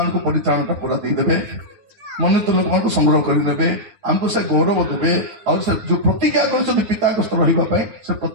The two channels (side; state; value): left; late; 9.3 ms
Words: ପରିତ୍ରାଣଟା ପୁରା ଦେଇଦେବେ ମନୋନୀତ ଲୋକମାନଙ୍କୁ ସଂଗ୍ରହ କରିନେବେ ଆମକୁ ସେ ଗୌରବ ଦେବେ ଆଉ ସେ ଯୋଉ ପ୍ରତିଜ୍ଞା କରିଛନ୍ତି ପିତାଙ୍କ ସ୍ତର ରହିବା ପାଇଁ ସେ